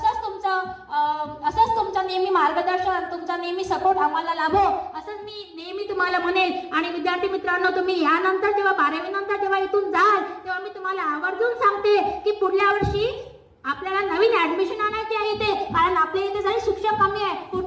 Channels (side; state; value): both; identical; correlation 1.00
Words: असंच तुमचं नेहमी मार्गदर्शन, तुमचा नेहमी सपोर्ट आम्हाला लाभो असंच मी नेहमी तुम्हाला म्हणेन. आणि विद्यार्थी मित्रांनो तुम्ही यानंतर जेव्हा 12वी नंतर जेव्हा इथून जाल तेव्हा मी तुम्हाला आवर्जून सांगते की पुढल्या वर्षी आपल्याला नवीन ऍडमिशन आणायची आहे इथे, कारण आपल्या इथे जरी शिक्षक कमी आहे,